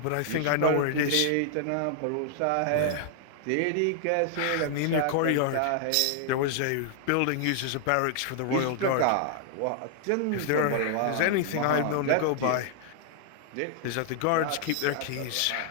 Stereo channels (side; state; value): both; different; correlation -0.01